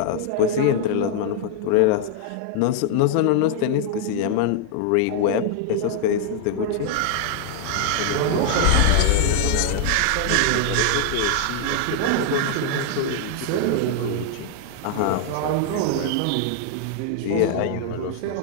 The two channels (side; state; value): both; different; correlation 0.00